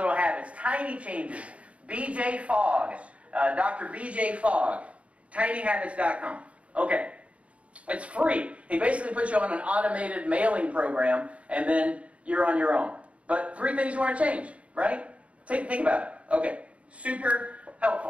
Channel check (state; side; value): late; left; 0.064 ms